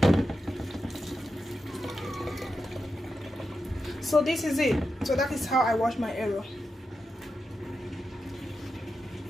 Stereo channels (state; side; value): normal; both; correlation 0.88